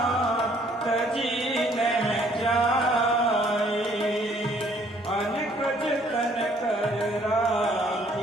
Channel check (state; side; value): normal; both; correlation 0.62